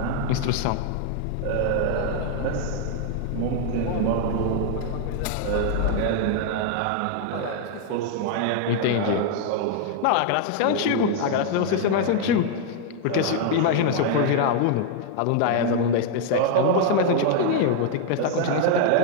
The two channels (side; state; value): both; different; correlation 0.00